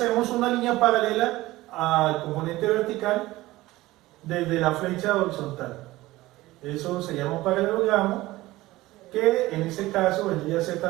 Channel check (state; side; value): quieter; left; 18.1 dB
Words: una línea paralela al componente vertical desde la flecha horizontal. Eso se llama un paralelogramo, que en este caso vendría a ser